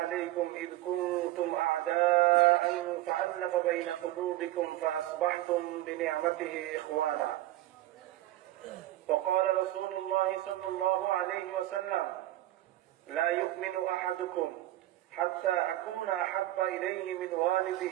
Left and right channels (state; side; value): quieter; left; 15.6 dB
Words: إذ كنتم أعداء فألف بين قلوبكم فأصبحتم بنعمته إخوانا. وقال رسول الله صلى الله عليه وسلم: لا يؤمن أحدكم حتى أكون أحب إليه من